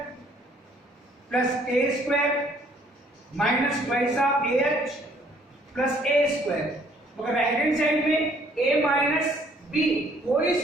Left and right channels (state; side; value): normal; both; correlation 0.62